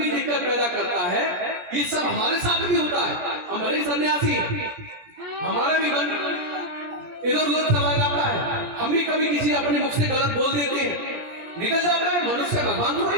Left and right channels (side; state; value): left; late; 17 ms